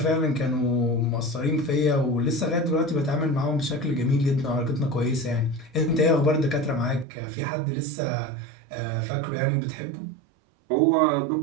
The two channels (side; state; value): left; drops out; at 7.1 s